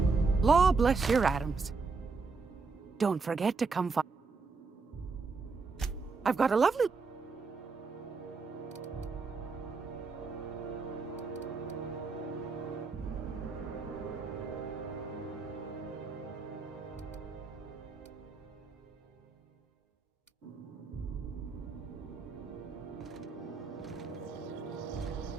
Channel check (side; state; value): left; quieter; 4.5 dB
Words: Law bless your atoms. Don't forget to come find... I've got a lovely...